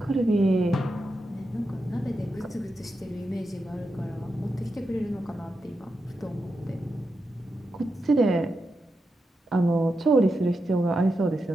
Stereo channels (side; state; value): both; normal; correlation 0.87